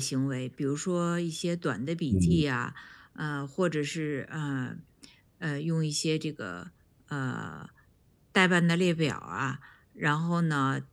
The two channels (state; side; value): identical; both; correlation 1.00